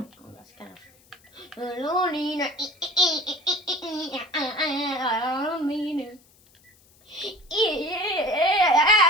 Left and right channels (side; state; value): left; noise; hiss, 30 dB below the sound